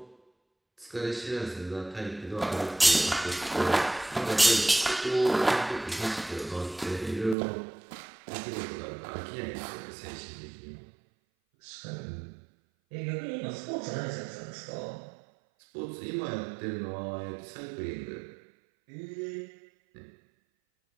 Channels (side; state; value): left; drops out; at 7.4 s